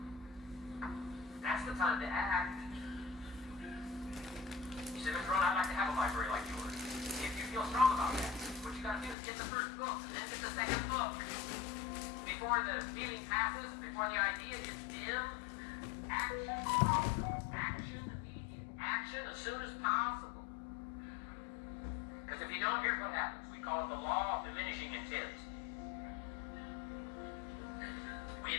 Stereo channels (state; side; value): drops out; right; at 9.2 s